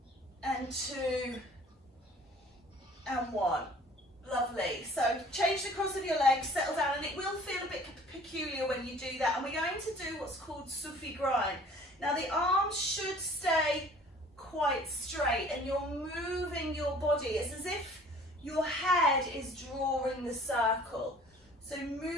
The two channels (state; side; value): normal; both; correlation 0.51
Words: and 2, and 1. Lovely. So change the cross of your legs, settle down, and it will feel a bit peculiar when you do that. And we're going to do what's called Sufi grind. Now the arms should stay quite straight and you're moving your body. It's as if your head is drawing the circle. So